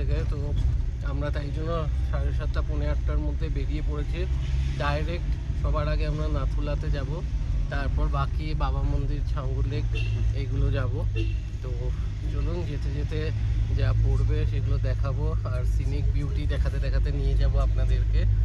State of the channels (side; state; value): both; identical; correlation 1.00